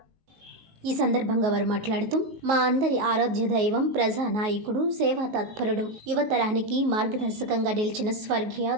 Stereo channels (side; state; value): left; late; 19 ms